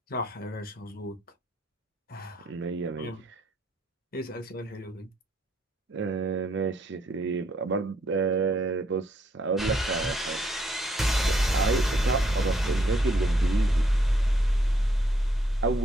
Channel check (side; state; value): both; normal; correlation 0.71